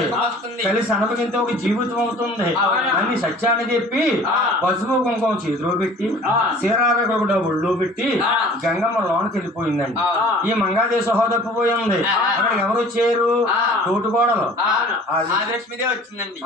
కలిసి అనుభవించే ఒక జీవితం అవుతుంది. అన్ని సత్యాన్ని చెప్పి పసుపు కుంకుమ చేతిలో పెట్టి చీరారకుండా ఒళ్ళో పెట్టి గంగమ్మ లోనికి వెళ్ళిపోయిందండి. ఈ మంగాదేవి సహోదరిపోయింది. అక్కడికి ఎవరు వచ్చారు? తోటికోడలు వచ్చిందండి.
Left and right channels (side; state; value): both; normal; correlation 0.47